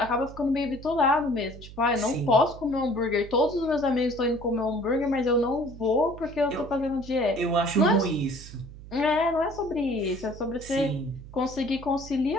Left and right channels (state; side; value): noise; right; hum, 16 dB below the sound